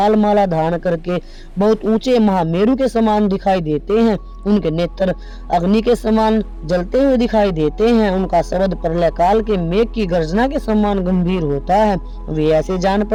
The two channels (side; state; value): both; identical; correlation 1.00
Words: माला धारण करके बहुत ऊंचे महामेरु के समान दिखाई देते हैं। उनके नेत्र अग्नि के समान जलते हुए दिखाई देते हैं। उनका शब्द प्रलय काल के मेघ की गर्जना के समान गंभीर होता है। वे ऐसे जान